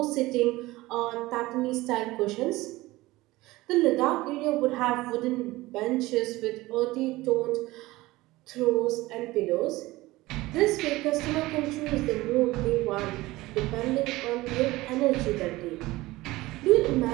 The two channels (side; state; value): left; quieter; 19.1 dB